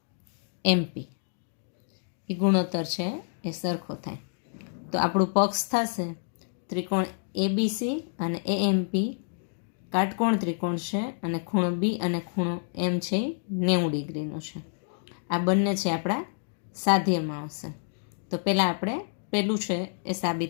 એમપી એ ગુણોત્તર છે એ સરખો થાય. તો આપણું પક્ષ થશે ત્રિકોણ એબીસી અને એએમપી કાટકોણ ત્રિકોણ છે અને ખૂણો બી અને ખૂણો એમ છે એ 90 ડિગ્રીનો છે. આ બંને છે આપણા સાધ્યમાં આવશે. તો પહેલાં આપણે પહેલું છે એ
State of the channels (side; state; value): right; silent; digital silence